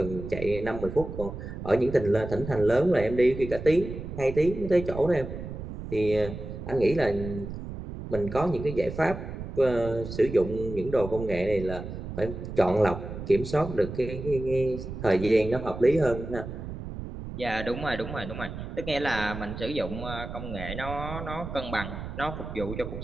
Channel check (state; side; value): noise; right; rumble, 8 dB below the sound